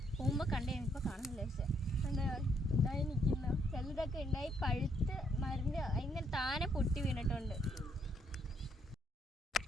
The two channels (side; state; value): both; normal; correlation 0.72